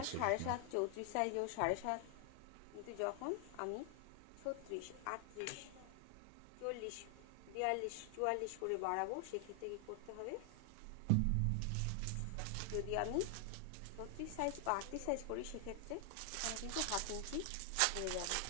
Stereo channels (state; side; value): different; both; correlation 0.00